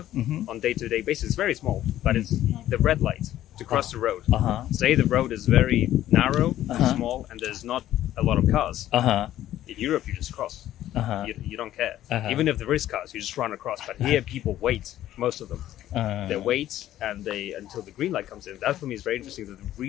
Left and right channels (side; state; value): right; quieter; 13.1 dB